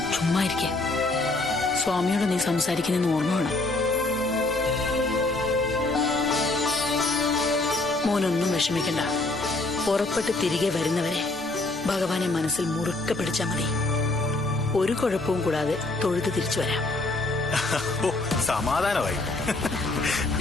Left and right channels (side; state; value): right; quieter; 3.0 dB